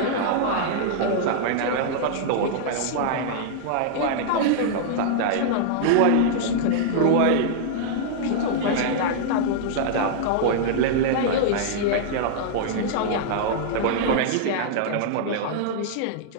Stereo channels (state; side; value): different; both; correlation -0.01